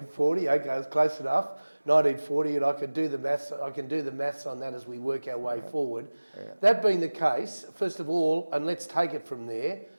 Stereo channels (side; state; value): both; inverted; correlation -1.00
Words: okay, that's close enough. 1940, and I can do the maths on that as we work our way forward. Yeah. That being the case, first of all, and let's take it from there,